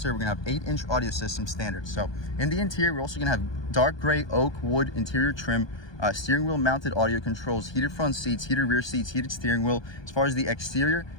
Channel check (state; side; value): late; right; 1.2 ms